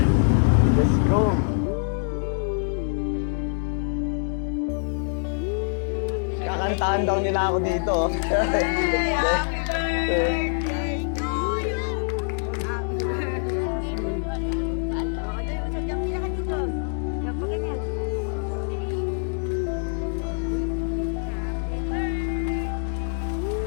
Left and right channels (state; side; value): silent; right; digital silence